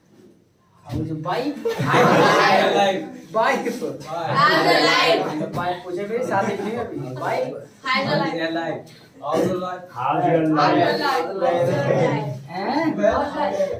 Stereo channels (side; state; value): both; identical; correlation 1.00